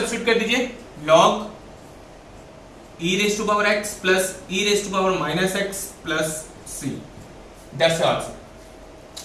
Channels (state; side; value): identical; both; correlation 1.00